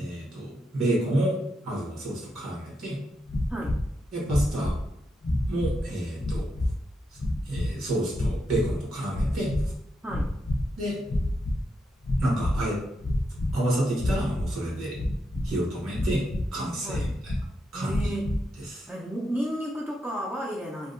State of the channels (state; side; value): normal; both; correlation 0.84